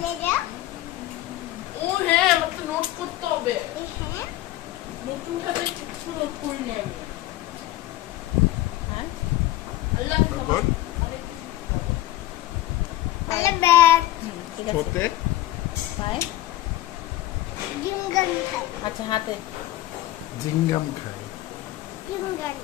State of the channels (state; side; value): quieter; right; 15.5 dB